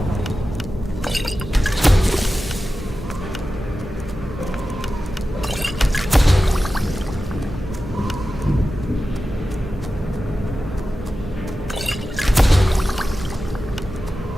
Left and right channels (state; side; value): normal; both; correlation 0.93